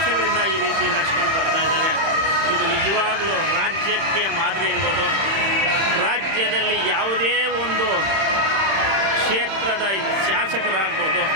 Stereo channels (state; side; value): late; left; 31 ms